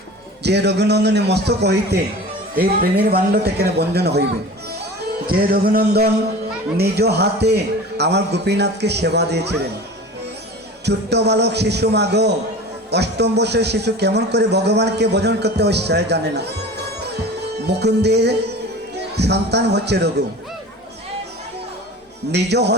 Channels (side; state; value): both; normal; correlation 0.37